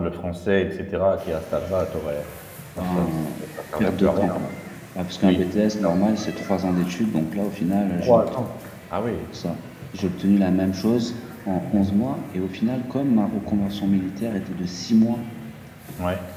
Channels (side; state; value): both; identical; correlation 1.00